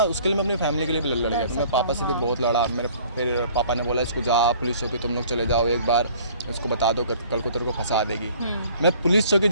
उसके लिए मैं अपनी फैमिली के लिए भी लड़ गया। मैं पापा से भी बहुत लड़ा। मेरे फिर पापा ने बोला इसको जा पुलिस चौकी तुम लोग चले जाओ, एक बार उसको बता दो, कल को तेरे को फंसा देगी। मैं पुलिस चौकी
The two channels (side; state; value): both; inverted; correlation -0.53